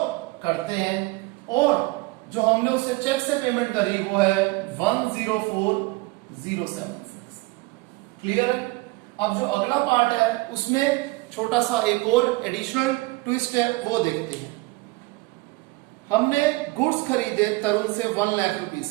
करते हैं, और जो हमने उससे चेक से पेमेंट करी वो है 104,076। क्लियर है? अब जो अगला पार्ट है उसमें छोटा सा एक और एडिशनल ट्विस्ट है, वो देखते हैं। हमने गुड्स खरीदे तरुण से 1 लाख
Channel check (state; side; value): quieter; left; 22.6 dB